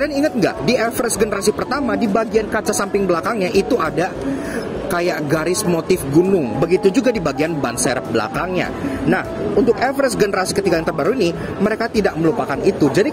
ingat nggak, di Everest generasi pertama, di bagian kaca samping belakangnya itu ada kayak garis motif gunung. Begitu juga di bagian ban serep belakangnya. Nah, untuk Everest generasi ketiga yang terbaru ini, mereka tidak melupakan itu. Jadi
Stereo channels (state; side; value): identical; both; correlation 1.00